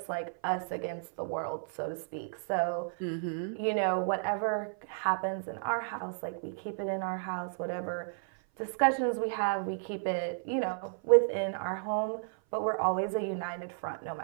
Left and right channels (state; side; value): silent; left; 55 dB below the other